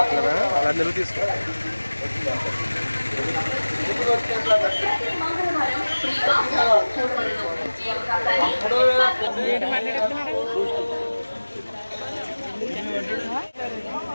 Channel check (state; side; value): inverted; both; correlation -1.00